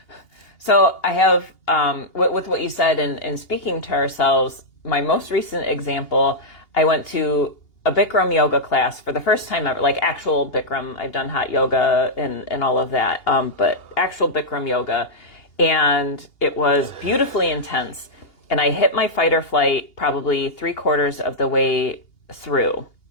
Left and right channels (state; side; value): late; right; 2.8 ms